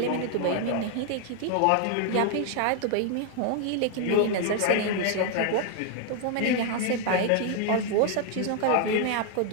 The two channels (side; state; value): both; different; correlation 0.00